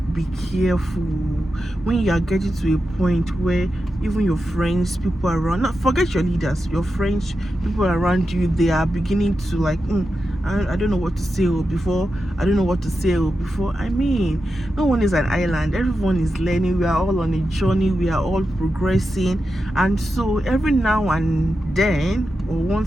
be careful when you are getting to a point where even your friends, people around, not forget your leaders, your friends, people around you, they are beginning to like, I don't know what to say before. I don't know what to say before. I mean, no one is an island. Everyone is learning. We are all on a journey. We are all progressing. And so every now and then, or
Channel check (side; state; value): both; normal; correlation 0.89